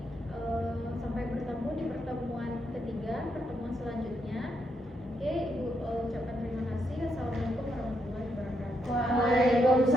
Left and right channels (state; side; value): normal; both; correlation 0.79